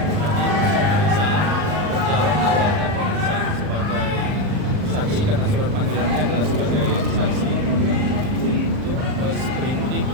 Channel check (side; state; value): left; late; 39 ms